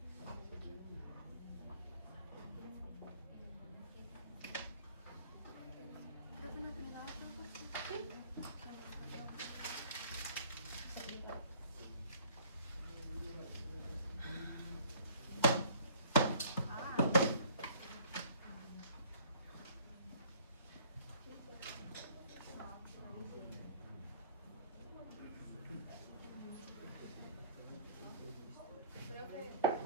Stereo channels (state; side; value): inverted; both; correlation -0.54